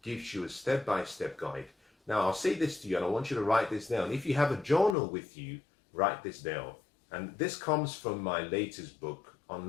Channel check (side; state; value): right; drops out; at 5.0 s